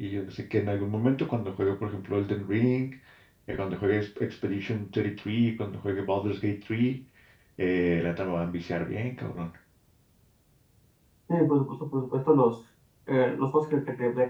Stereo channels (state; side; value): identical; both; correlation 1.00